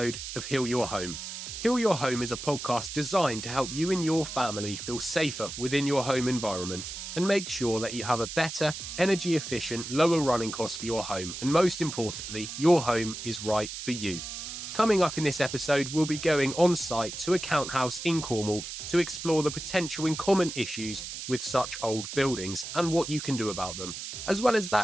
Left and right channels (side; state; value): right; noise; hiss, 8 dB below the sound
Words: of Heal Your Home. Heal Your Home is a podcast designed to help you and your family feel safer within your home environment and make sure that you have a better, energy efficient, lower running cost for your home, and most importantly, your home is right for you. Coming up in this episode, we'll be going on site to a count house in Cornwall to explore the potential and common issues with such old buildings and what you can do about them. As well as